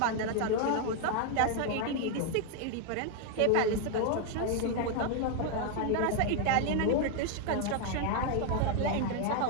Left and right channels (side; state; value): both; different; correlation 0.00